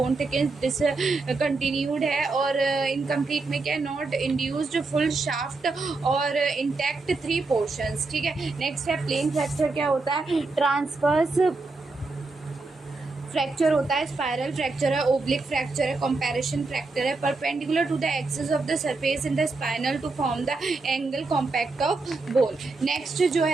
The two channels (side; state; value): left; quieter; 3.7 dB